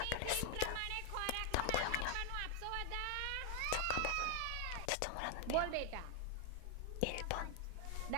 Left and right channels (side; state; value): both; different; correlation 0.00